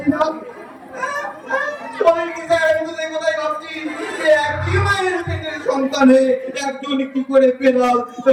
না সন্তানে একজন কি করে পেলাম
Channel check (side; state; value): both; identical; correlation 1.00